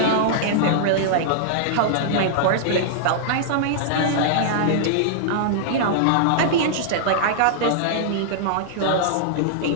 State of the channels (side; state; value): both; different; correlation -0.01